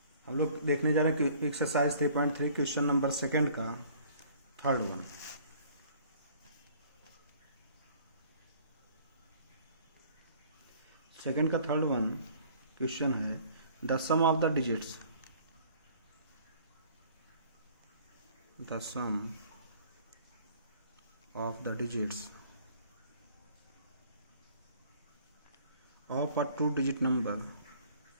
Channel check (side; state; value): both; inverted; correlation -0.53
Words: हम लोग देखने जा रहे हैं कि एक्सरसाइज 3.3 क्वेश्चन नंबर सेकंड का थर्ड वन। सेकंड का थर्ड वन क्वेश्चन है the sum of the digits of a two-digit number